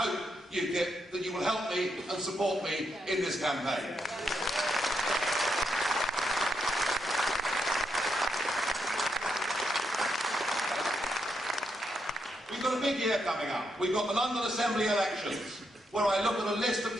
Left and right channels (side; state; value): both; normal; correlation 0.81